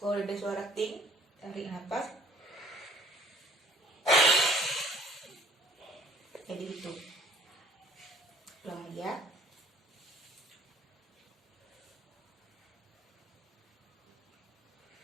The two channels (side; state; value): both; normal; correlation 0.54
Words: Kalau ada suara ting, tarik nafas. Jadi itu. Ulang lagi ya.